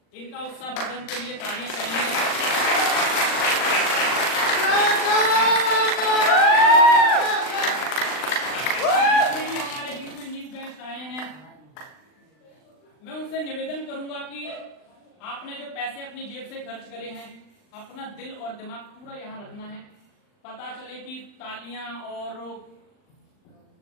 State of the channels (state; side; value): late; right; 39 ms